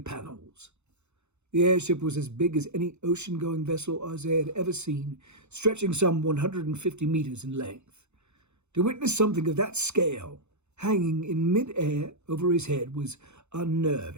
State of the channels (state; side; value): late; left; 0.82 ms